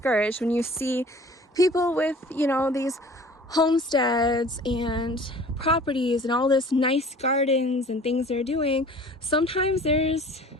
when you see people with, you know, these homesteads and properties and all this nice gardens and things they're doing. Sometimes there's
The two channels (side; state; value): both; normal; correlation 0.47